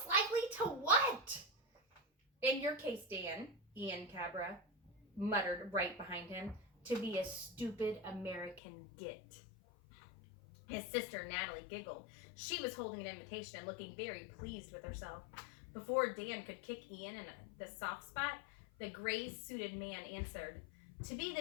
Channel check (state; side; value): drops out; right; at 8.6 s